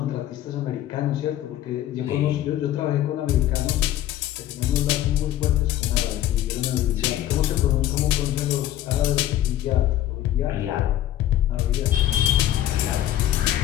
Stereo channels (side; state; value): right; quieter; 12.8 dB